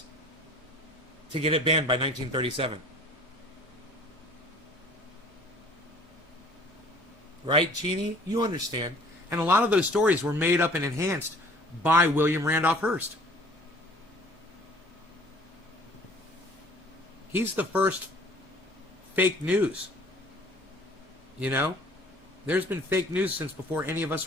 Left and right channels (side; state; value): both; normal; correlation 0.51